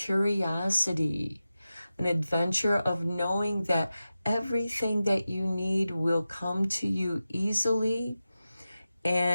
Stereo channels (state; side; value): inverted; both; correlation -0.93